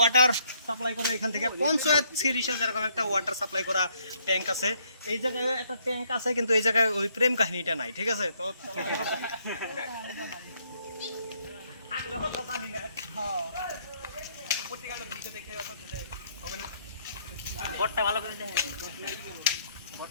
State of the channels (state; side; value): inverted; both; correlation -0.69